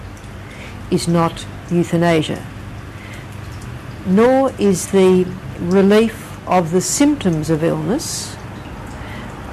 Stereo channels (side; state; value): both; identical; correlation 1.00